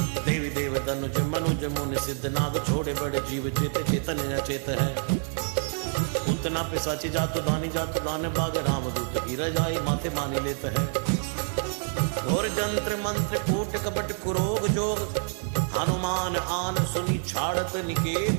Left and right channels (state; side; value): silent; left; 59 dB below the other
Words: देवी देव तनुज मनुज मुनि सिद्ध नाग छोड़े बड़े जीव चेत चेतन अचेत है उतना पिशाची जातु दान बाग रामदूत की रजाई माथे मानी लेत है घोर जंत्र मंत्र कूट कपट कुरोग जोग हनुमान आन सुनी छाड़त